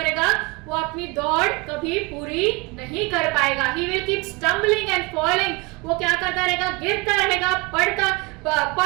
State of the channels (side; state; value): left; quieter; 25.4 dB